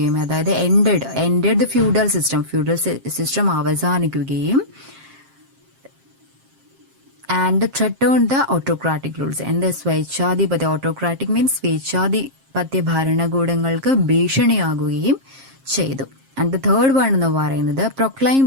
അതായത് എൻഡഡ് ദ ഫ്യൂഡൽ സിസ്റ്റം അവസാനിക്കുകയും and threatened the autocratic rules. സ്വേച്ഛാധിപത്യ, ഓട്ടോക്രാറ്റിക് മീൻസ് സ്വേച്ഛാധിപത്യ ഭരണകൂടങ്ങൾക്ക് ഭീഷണിയാകുകയും ചെയ്തു. ആൻഡ് ദ തേർഡ് വൺ എന്ന് പറയുന്നത് proclaim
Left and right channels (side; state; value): left; late; 7.5 ms